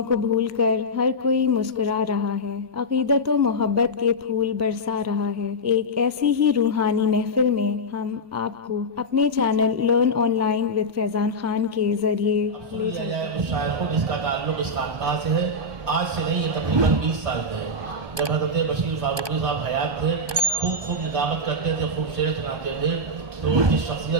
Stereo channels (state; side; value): late; left; 1.2 ms